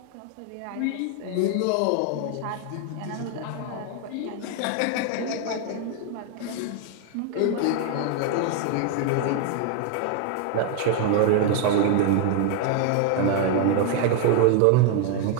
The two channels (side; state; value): both; different; correlation 0.00